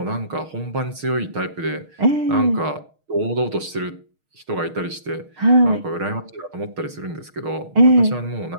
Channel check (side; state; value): left; late; 6.5 ms